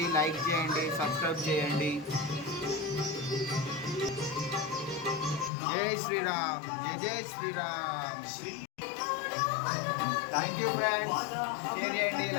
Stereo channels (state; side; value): drops out; right; at 5.5 s